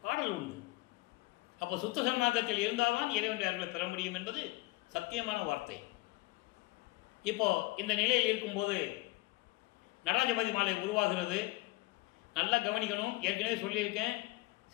பாடல் உண்டு. அப்போ சுத்த சன்மார்க்கத்தில் இருந்தால்தான் இறைவனுடைய அருளை பெற முடியும் என்பது சத்தியமான வார்த்தை. இப்போ இந்த நிலையில் இருக்கும்போது நடராஜபதி மாலை உருவாகிறது. நல்லா கவனிக்கணும். ஏற்கனவே சொல்லியிருக்கேன்,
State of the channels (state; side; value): quieter; right; 22.0 dB